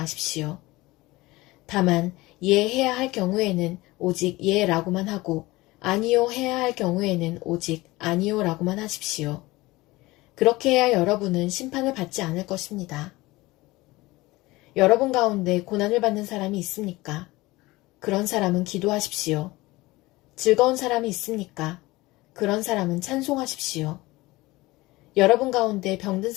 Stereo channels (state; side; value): quieter; right; 20.4 dB